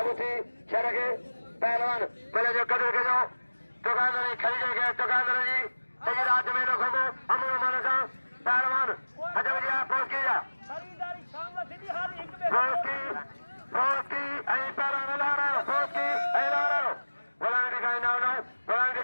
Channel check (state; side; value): inverted; both; correlation -1.00